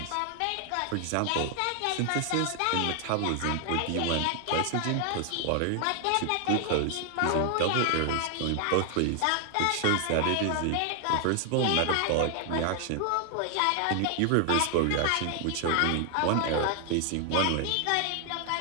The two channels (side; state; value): both; different; correlation 0.00